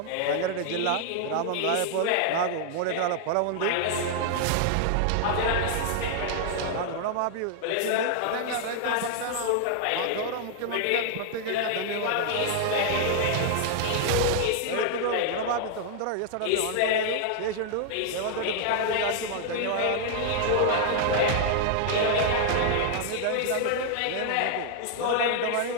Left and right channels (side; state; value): both; different; correlation 0.00